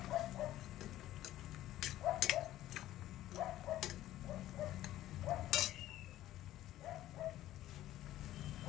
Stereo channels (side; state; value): right; quieter; 14.1 dB